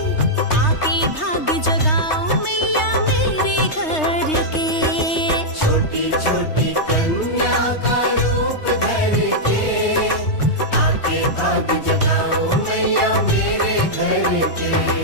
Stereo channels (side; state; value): right; late; 3.2 ms